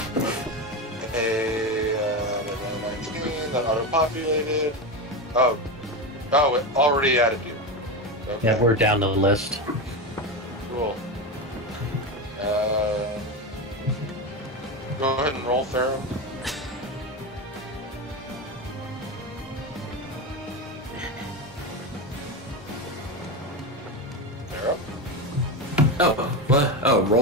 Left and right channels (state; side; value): normal; both; correlation 0.17